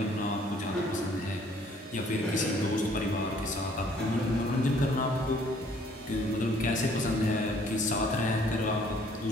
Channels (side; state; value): both; normal; correlation 0.60